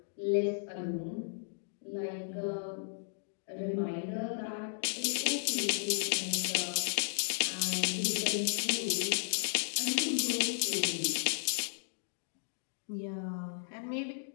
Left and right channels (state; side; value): silent; right; digital silence